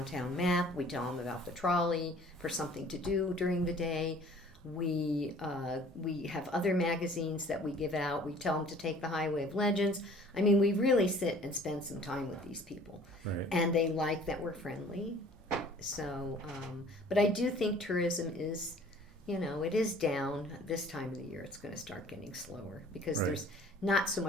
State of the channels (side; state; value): both; normal; correlation 0.51